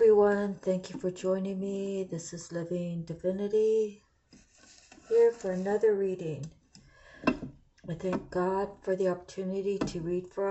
thank you for joining me. This is Living Divinity here for another reading. I thank God for the opportunity to read for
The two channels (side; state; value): both; identical; correlation 1.00